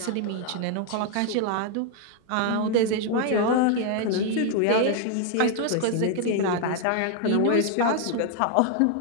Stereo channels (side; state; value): both; different; correlation 0.00